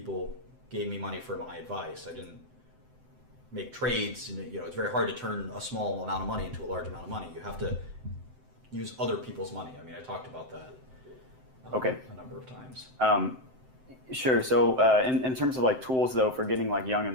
gave me money for my advice. I didn't make trades. It's very hard to turn a small amount of money into a large amount of money. You have to use other people's money. I mean, I talked about that a number of times. Sure. So in terms of like tools, though, for getting like young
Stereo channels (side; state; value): left; late; 7.8 ms